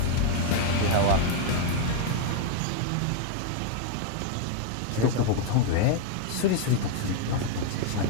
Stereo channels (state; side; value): different; both; correlation 0.00